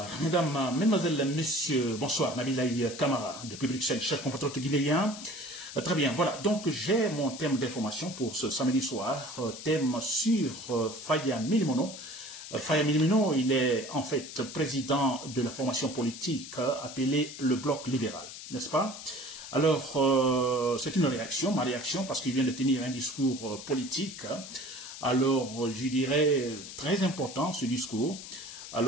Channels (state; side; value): noise; left; hiss, 12 dB below the sound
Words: mesdames, mesdemoiselles, messieurs, bonsoir, Nabilaï Kamara, depuis Bruxelles, chef compatriote guinéen. Très bien, voilà, donc j'ai mon thème d'information pour ce samedi soir, thème sur Faya Milimono. Faya Milimono, il est en fait président de la formation politique appelée le Bloc libéral, n'est-ce pas? Alors, c'est une réaction, ma réaction, parce qu'il vient de tenir un discours politique. Alors, je dirais, très important ce discours.